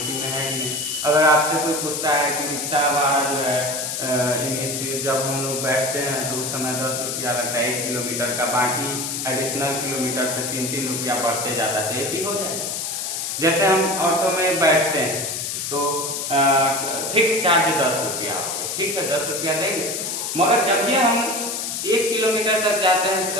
में है कि नहीं। अगर आपसे कोई पूछता है कि रिक्शा वाला जो है जब हम लोग बैठते हैं तो उस समय 10 रुपया लगता है 1 किलोमीटर का, बाकी एडिशनल किलोमीटर पे 3-3 रुपया बढ़ते जाता है, तो AP हो जाएगा। जैसे हम ऑटो में बैठते हैं तो फिक्स चार्ज 10 रुपया, ठीक है 10 रुपया देंगे, मगर जब ये हम 1 किलोमीटर तक जाते हैं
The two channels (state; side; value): noise; left; hiss, 3 dB below the sound